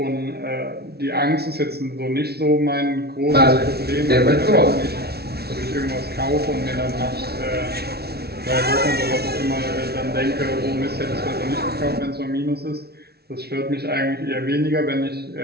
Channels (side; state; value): left; late; 0.46 ms